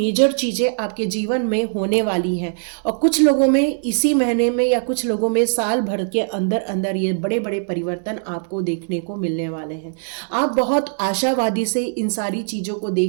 चीज़ें आपके जीवन में होने वाली हैं। और कुछ लोगों में इसी महीने में, या कुछ लोगों में साल भर के अंदर अंदर ये बड़े बड़े परिवर्तन आपको देखने को मिलने वाले हैं। आप बहुत आशावादी से इन सारी चीज़ों को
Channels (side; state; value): left; silent; digital silence